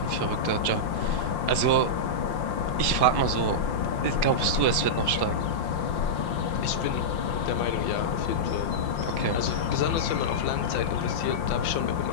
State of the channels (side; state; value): right; late; 5.7 ms